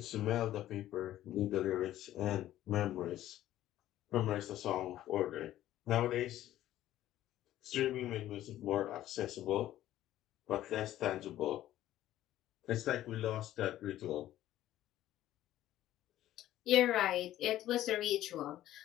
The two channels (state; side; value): quieter; right; 13.5 dB